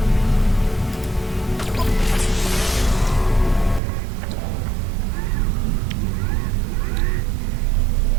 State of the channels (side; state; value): left; drops out; at 3.8 s